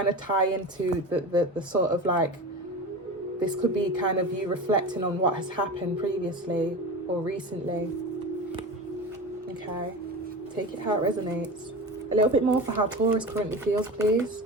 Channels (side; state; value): both; normal; correlation 0.29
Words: of tie into the sort of like, this could be kind of you reflecting on what has happened previously or recently. Okay. Take it how it resonates. A little bit more for how Taurus currently feels, please.